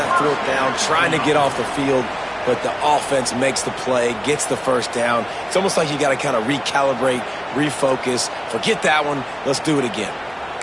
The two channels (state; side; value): identical; both; correlation 1.00